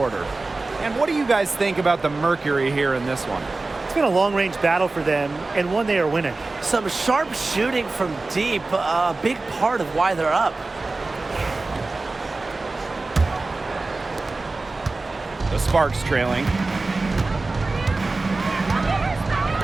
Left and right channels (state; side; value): quieter; left; 3.4 dB